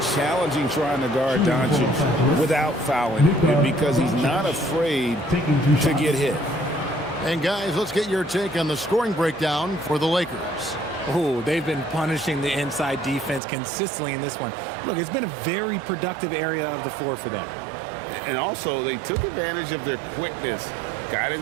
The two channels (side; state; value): left; drops out; at 13.4 s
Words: challenging trying to guard Doncic without fouling because he's not afraid to get hit. And guys, let's get your take on the scoring breakdown for the Lakers. Oh, they've been punishing the inside defense consistently in this one. Look, it's been a very productive area of the floor for them. And also, they took advantage of their quickness, got